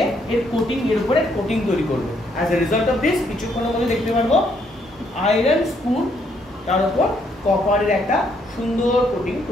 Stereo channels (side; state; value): both; normal; correlation 0.71